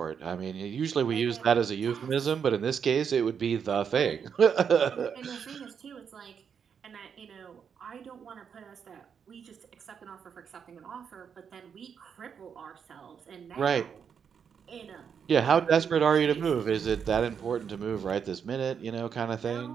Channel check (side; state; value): left; quieter; 7.1 dB